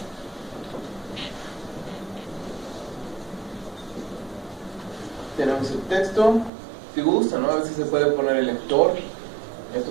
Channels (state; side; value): drops out; left; at 6.5 s